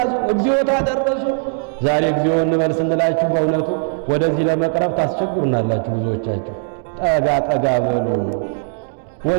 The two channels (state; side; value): silent; left; digital silence